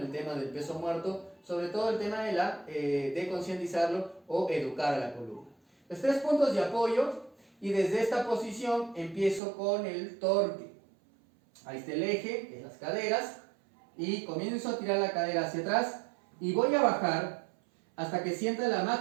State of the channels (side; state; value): left; drops out; at 9.4 s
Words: tema del peso muerto, sobre todo el tema de concientizarlo o educar a la columna. Los 3 puntos de apoyo, y desde esta posición empiezo con el torque. Ahí está el eje, que es las caderas, y comienzo a tirar la cadera hacia atrás y voy a bajar hasta que sienta la